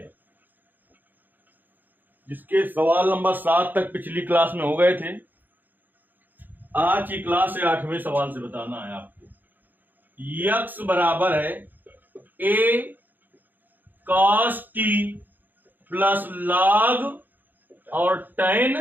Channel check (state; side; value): late; left; 0.088 ms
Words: जिसके सवाल नंबर 7 तक पिछली क्लास में हो गए थे। आज की क्लास से 8वें सवाल से बताना है आपको। यक्स बराबर है a cos t plus log और tan